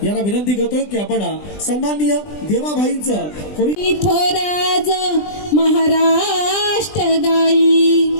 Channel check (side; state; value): right; late; 20 ms